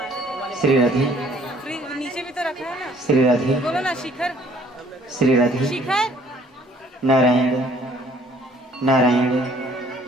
श्री राधे नीचे भी तो रखा है ना। श्री राधे बोलो ना शिखर। श्री राधे शिखर नारायण नारायण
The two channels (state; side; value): normal; both; correlation 0.59